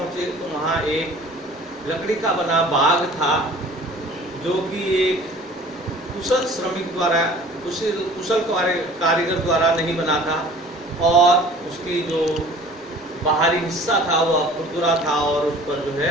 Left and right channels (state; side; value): normal; both; correlation 0.47